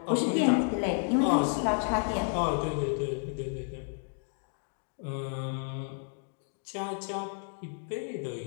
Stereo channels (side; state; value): right; silent; 57 dB below the other